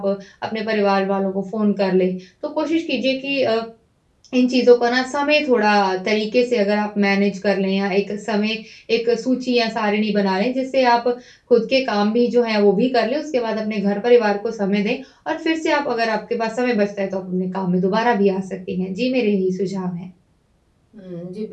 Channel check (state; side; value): identical; both; correlation 1.00